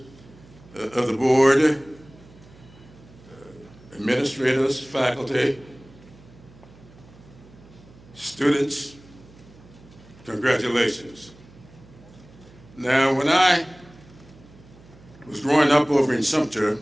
of the board, administrators, faculty, students, congratulations. Now, when I was growing up over in Sumter,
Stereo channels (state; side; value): noise; right; hum, 23 dB below the sound